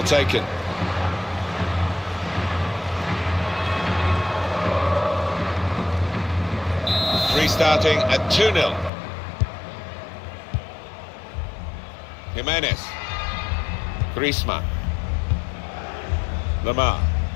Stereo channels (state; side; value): drops out; right; at 8.9 s